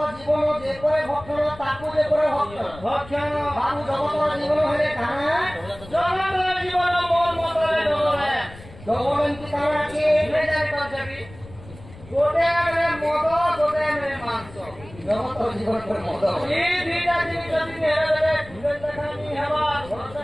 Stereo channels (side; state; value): left; noise; rumble, 18 dB below the sound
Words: জীবন যে করে ভক্ষণ তাকু যে করে ভক্ষণ বাবু জগতর জীবন হলে কানা জগতর জীবন মন মতরে ডলে ডবলন্তি কানা কি মেজার কজবি গোটে আরে মদ গোটে আরে মাংস জগতর জীবন করে মদ এই দুইটা জিনিস যদি হেরে দেবে ভিড় দেখানি হেবা ঘর